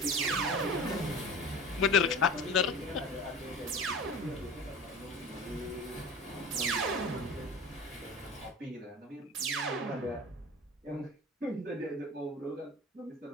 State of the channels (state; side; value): normal; both; correlation 0.36